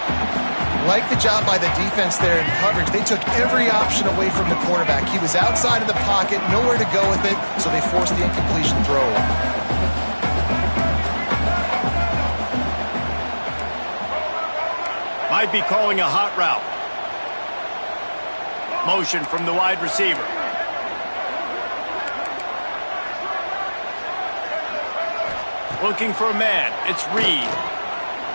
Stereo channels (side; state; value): both; inverted; correlation -1.00